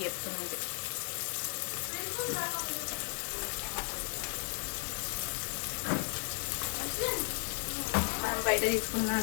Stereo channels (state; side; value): silent; right; digital silence